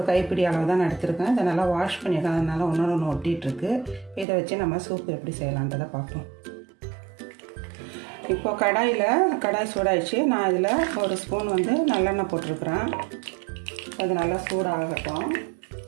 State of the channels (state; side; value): drops out; left; at 4.2 s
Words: கைப்பிடி அளவு தான் எடுத்துருக்கேன். இதை நல்லா வாஷ் பண்ணிடலாம். அதனால் ஒன்று ஒட்டிகிட்ருக்கு. இதை வச்சு நம்ம சூப் எப்படி செய்யலான்றதை பார்ப்போம். இப்போ கடாய் சூடாயிடுச்சு. நான் இதில் ஒரு ஸ்பூன் நல்லெண்ணெய் போட்டிருக்கிறேன். அது நல்லா சூடாகட்டும்.